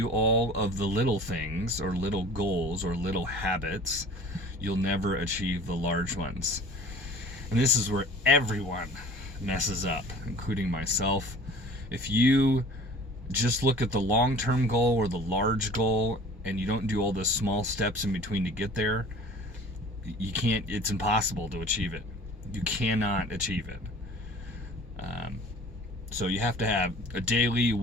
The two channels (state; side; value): normal; both; correlation 0.45